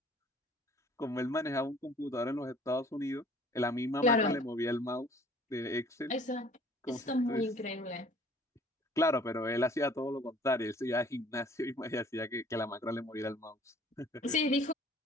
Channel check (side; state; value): both; normal; correlation 0.54